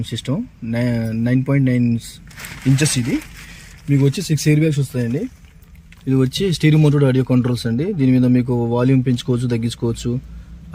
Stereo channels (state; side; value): identical; both; correlation 1.00